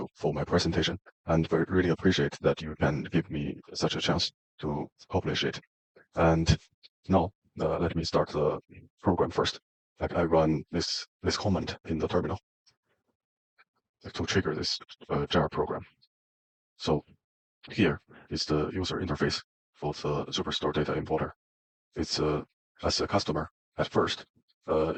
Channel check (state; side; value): identical; both; correlation 1.00